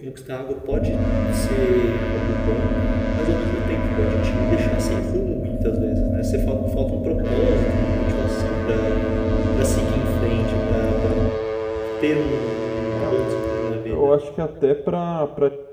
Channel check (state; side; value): identical; both; correlation 1.00